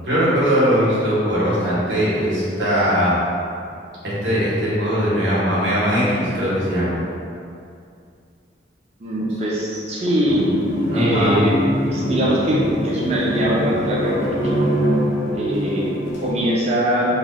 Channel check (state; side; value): normal; both; correlation 0.51